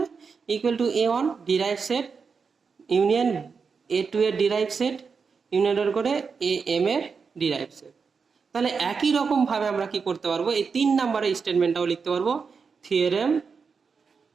equal to A1 derive set union A2 এর ডিরাইভ সেট ইউনিয়ন ডট করে AM এর ডিরাইভ সেট। তাহলে একই রকম ভাবে আমরা কি করতে পারবো, এই 3 নম্বরের স্টেটমেন্টটাও লিখতে পারবো। থিওরেম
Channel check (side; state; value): left; quieter; 5.4 dB